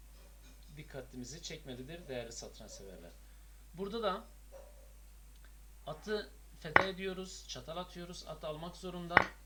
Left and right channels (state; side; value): identical; both; correlation 1.00